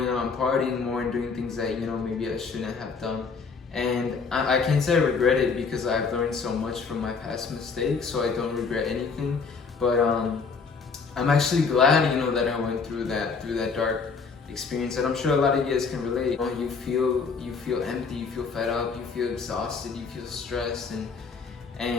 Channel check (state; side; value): quieter; right; 5.0 dB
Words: out and partying more and doing things that, you know, maybe I shouldn't have done. And I can't say I regret it because I've learned so much from my past mistakes, so I don't regret anything. But I'm actually glad, you know, that I went through that dark experience, and I'm sure a lot of you guys can relate. You feel empty, you feel fed up, you feel exhausted, you feel stressed,